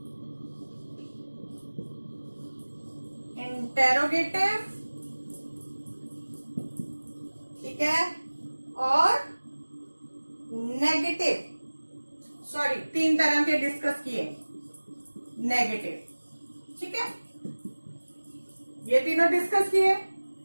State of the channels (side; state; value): both; inverted; correlation -1.00